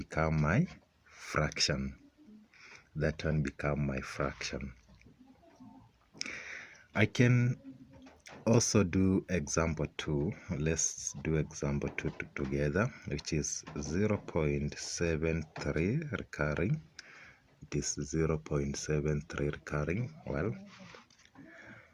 my fraction. That one become my fraction. I can also do example 2. Let's do example 2 together, which is 0.73 recurring. It is 0.73 recurring. Well,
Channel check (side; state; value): both; identical; correlation 1.00